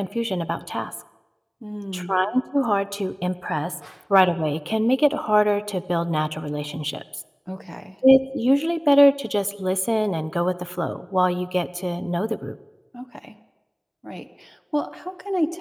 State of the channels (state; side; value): identical; both; correlation 1.00